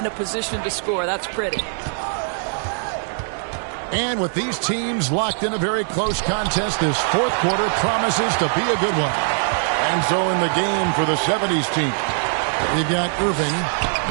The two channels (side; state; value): left; silent; 65 dB below the other